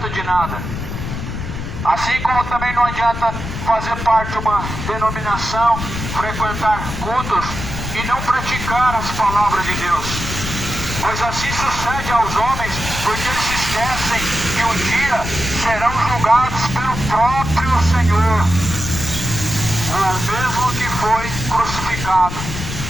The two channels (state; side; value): noise; left; rumble, 6 dB below the sound